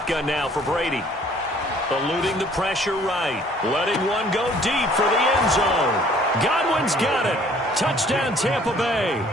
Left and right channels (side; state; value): both; normal; correlation 0.57